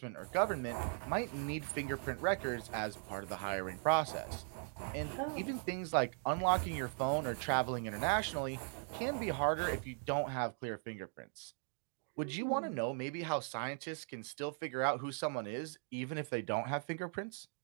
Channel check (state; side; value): silent; left; 52 dB below the other